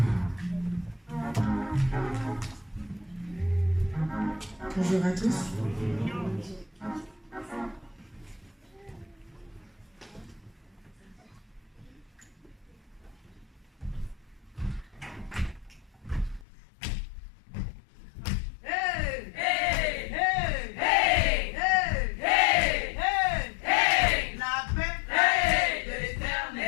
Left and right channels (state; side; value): drops out; right; at 16.4 s